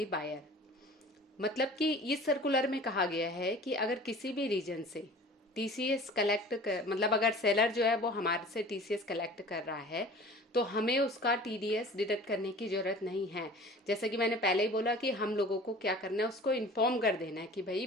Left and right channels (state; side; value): normal; both; correlation 0.44